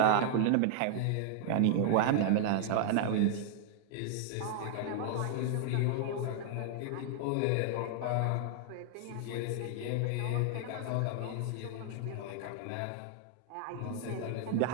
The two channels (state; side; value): different; both; correlation 0.00